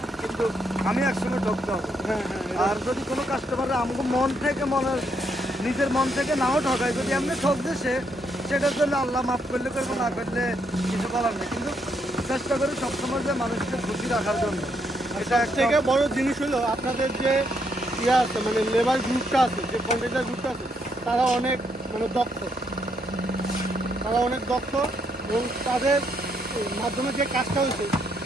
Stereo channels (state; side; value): normal; both; correlation 0.75